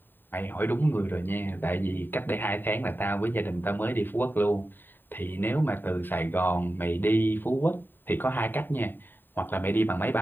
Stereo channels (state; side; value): late; right; 0.094 ms